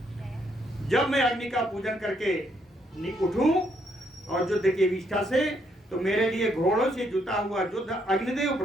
जब मैं अग्नि का पूजन करके उठूं और युद्ध की विष्ठा से, तो मेरे लिए घोड़ों से जुता हुआ युद्ध अग्निदेव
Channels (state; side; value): normal; both; correlation 0.73